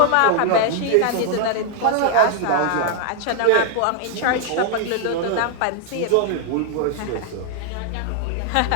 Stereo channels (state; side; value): different; both; correlation 0.00